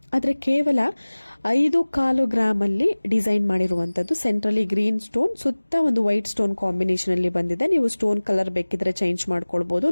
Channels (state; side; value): inverted; both; correlation -1.00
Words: ಆದ್ರೆ ಕೇವಲ 5.25 ಗ್ರಾಮ್ ಅಲ್ಲಿ ಡಿಸೈನ್ ಮಾಡಿರುವಂತದ್ದು. ಸೆಂಟ್ರಲಿ ಗ್ರೀನ್ ಸ್ಟೋನ್, ಸುತ್ತ ಒಂದು ವೈಟ್ ಸ್ಟೋನ್ ಕಾಂಬಿನೇಷನ್ ಅಲ್ಲಿ ಬಂದಿದೆ. ನೀವು ಸ್ಟೋನ್ ಕಲರ್ ಬೇಕಿದ್ರೆ ಚೇಂಜ್ ಮಾಡ್ಕೊಳ್ಬಹುದು.